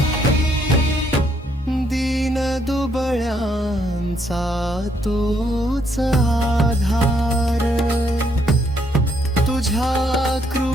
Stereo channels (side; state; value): both; normal; correlation 0.72